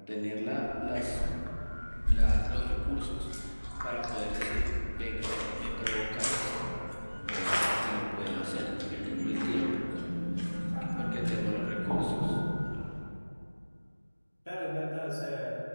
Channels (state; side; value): inverted; both; correlation -1.00